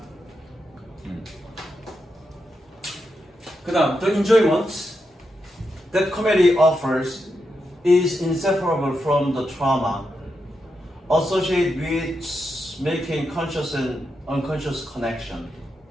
그 다음 The enjoyment that comedy offers is inseparable from the trauma associated with making conscious and unconscious connection.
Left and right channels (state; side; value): normal; both; correlation 0.85